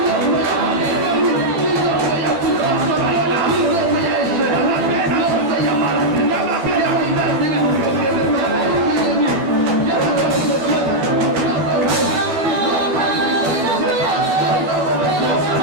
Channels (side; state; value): left; late; 12 ms